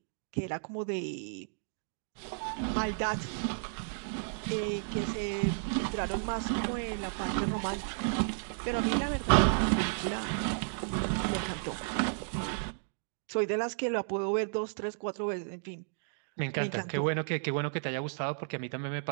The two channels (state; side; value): silent; left; digital silence